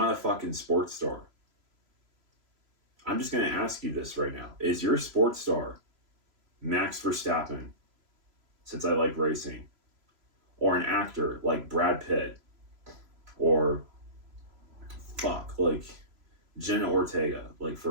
a fucking sports star. I'm just going to ask you this right now. Is your sports star Max Verstappen, since I like racing, or an actor like Brad Pitt, or like Jenna Ortega, like,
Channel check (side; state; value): left; late; 3.0 ms